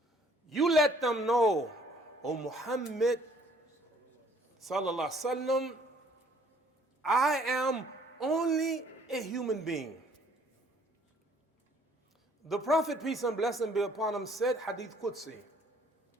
You let them know, O Muhammad sallallahu alaihi wasallam, I am only a human being. The Prophet, peace and blessing be upon him, said, Hadith Qudsi,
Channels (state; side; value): normal; both; correlation 0.60